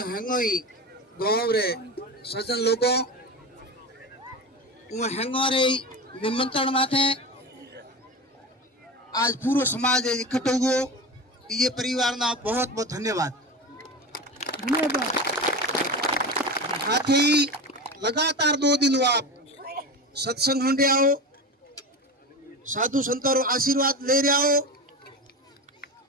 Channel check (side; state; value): both; normal; correlation 0.25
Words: हंगोई गांव रे सज्जन लोगों वो हंगो रे निमंत्रण माथे आज पूरा समाज इकट्ठो हुओ। ये परिवार ना बहुत बहुत धन्यवाद। साथ ही लगातार 2 दिन आप सत्संग होंगे आओ, साधु संतों आशीर्वाद ले रहे हो।